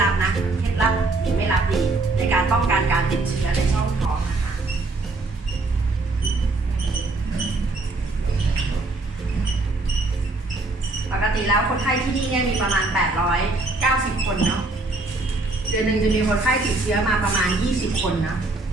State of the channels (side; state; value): left; quieter; 3.2 dB